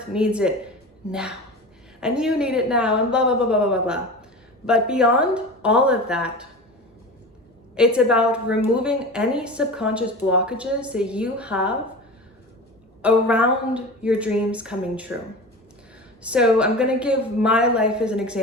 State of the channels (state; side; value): normal; both; correlation 0.31